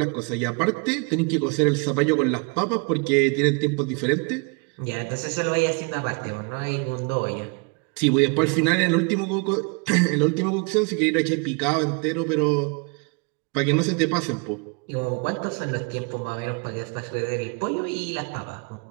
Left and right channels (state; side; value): quieter; left; 33.5 dB